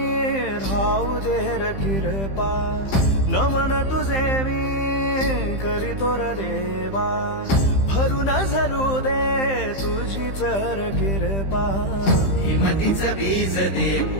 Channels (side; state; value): right; late; 15 ms